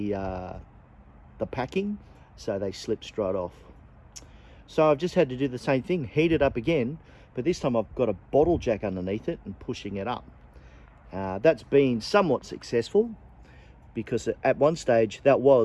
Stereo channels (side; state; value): both; identical; correlation 1.00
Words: packing, so they slipped straight off. So I've just had to do the same thing, heat it up again, but this time I've got a bottle jack underneath it and pushing it up. That's been somewhat successful, because at one stage that